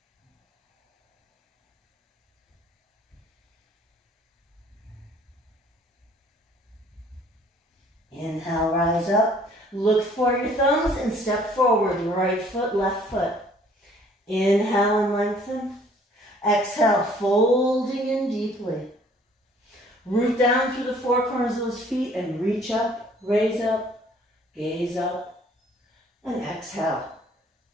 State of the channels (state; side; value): normal; both; correlation 0.58